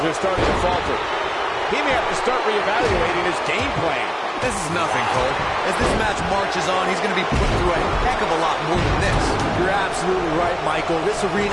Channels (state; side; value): identical; both; correlation 1.00